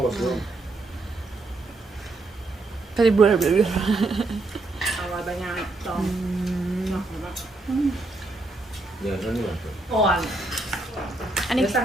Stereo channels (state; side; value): quieter; left; 3.0 dB